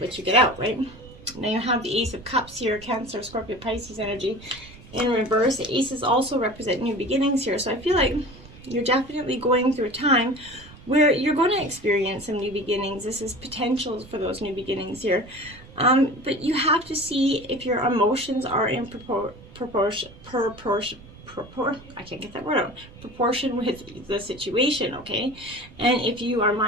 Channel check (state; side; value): noise; right; rumble, 20 dB below the sound